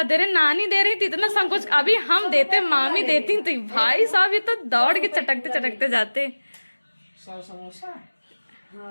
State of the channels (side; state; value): both; inverted; correlation -1.00